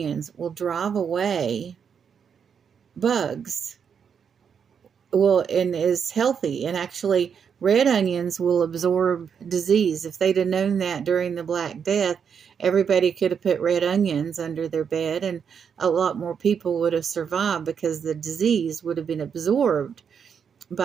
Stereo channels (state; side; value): quieter; left; 7.1 dB